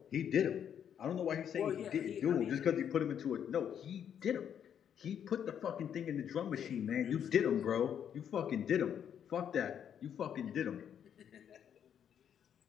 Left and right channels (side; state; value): right; quieter; 8.8 dB